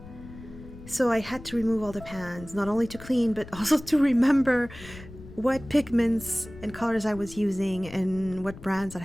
So I had to remove all the pans, not only to clean, but also to remember what pigments and colors I was using and what brands I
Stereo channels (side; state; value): left; noise; rumble, 16 dB below the sound